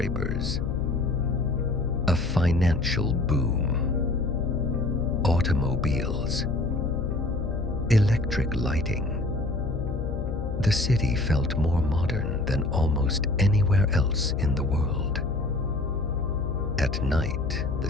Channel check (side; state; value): left; noise; hum, 5 dB below the sound